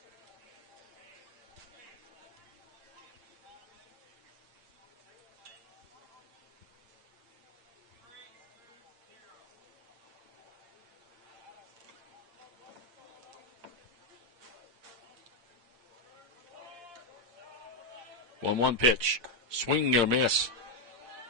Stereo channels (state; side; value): late; left; 8.6 ms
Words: One pitch. Swing and a miss.